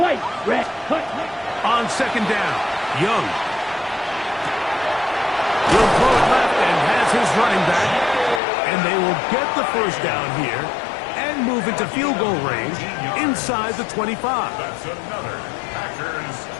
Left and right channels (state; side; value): drops out; right; at 8.4 s